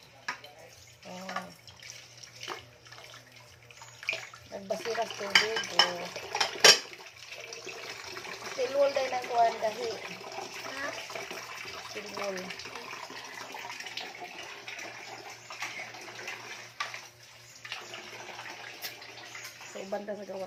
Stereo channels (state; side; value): identical; both; correlation 1.00